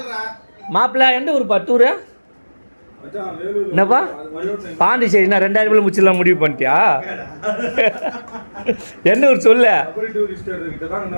மாப்பிள்ள எந்த ஊருப்பா டூரு? என்னப்பா பாண்டிச்சேரினா 2000 ரூபாய் முடிச்சிடலாம் முடிவு பண்ணிட்டியா? எந்த ஊர் சொல்ல?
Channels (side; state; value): both; inverted; correlation -1.00